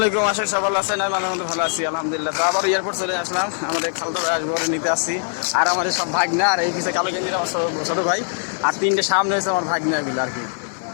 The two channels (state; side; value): silent; right; digital silence